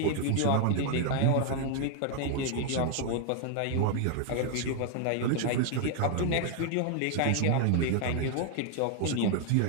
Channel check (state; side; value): different; both; correlation 0.00